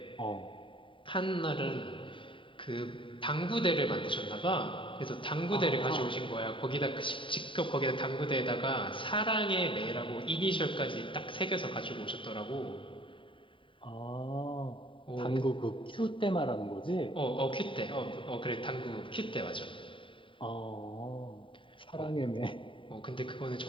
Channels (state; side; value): late; right; 0.25 ms